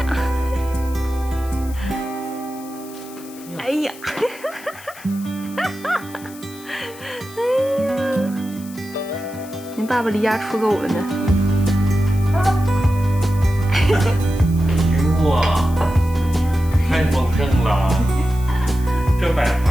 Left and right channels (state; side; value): noise; left; hiss, 19 dB below the sound